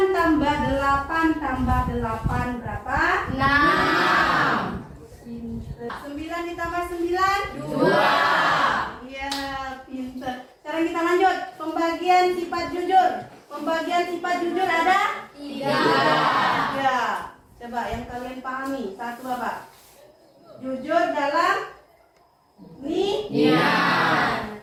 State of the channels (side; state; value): both; identical; correlation 1.00